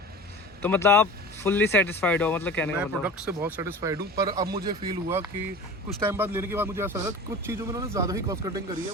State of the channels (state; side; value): normal; both; correlation 0.36